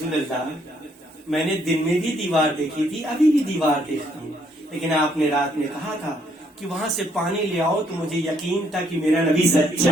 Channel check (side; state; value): both; normal; correlation 0.70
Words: اللہ میں نے دن میں بھی دیوار دیکھی تھی، ابھی بھی دیوار دیکھتا ہوں، لیکن آپ نے رات میں کہا تھا کہ وہاں سے پانی لے آؤ، تو مجھے یقین تھا کہ میرا نبی